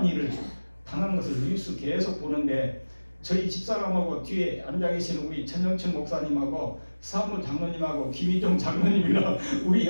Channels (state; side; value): inverted; both; correlation -1.00